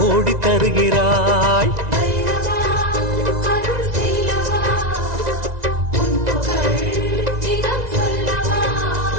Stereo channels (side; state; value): left; late; 1.9 ms